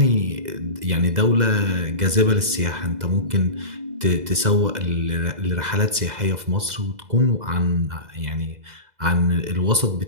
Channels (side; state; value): left; late; 2.0 ms